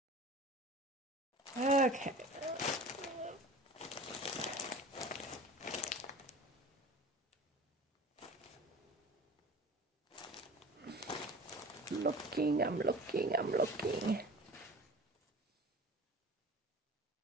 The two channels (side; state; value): both; normal; correlation 0.40